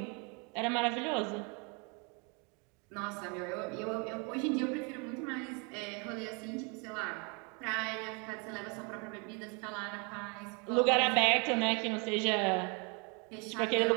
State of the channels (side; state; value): left; quieter; 32.9 dB